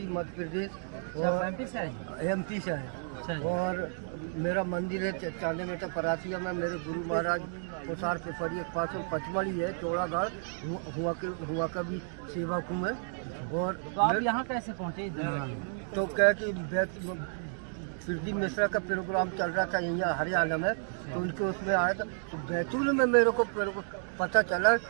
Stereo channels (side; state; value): left; silent; digital silence